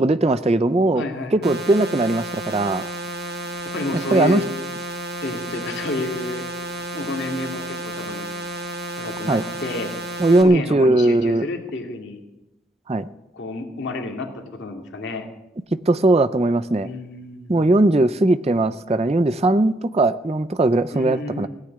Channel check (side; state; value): both; normal; correlation 0.69